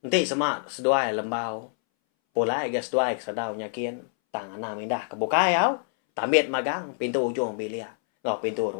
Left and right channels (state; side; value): silent; right; 61 dB below the other